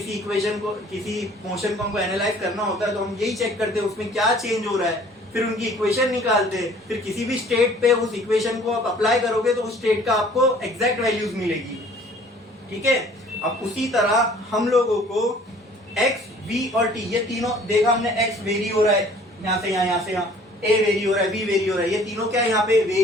इक्वेशन को, किसी मोशन को हमको एनालाइज करना होता है तो हम यही चेक करते हैं उसमें क्या चेंज हो रहा है, फिर उनकी इक्वेशन निकालते हैं, फिर किसी भी स्टेट पे उस इक्वेशन को आप अप्लाई करोगे तो उस स्टेट का आपको एग्जैक्ट वैल्यूज मिलेगी, ठीक है। अब उसी तरह हम लोगों को x, v और t, ये तीनों देखा हमने, x वेरी हो रहा है यहाँ से यहाँ, यहाँ से यहाँ, a वेरी हो रहा है, v वेरी हो रहा है, ये तीनों क्या है यहाँ पे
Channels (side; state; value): both; normal; correlation 0.53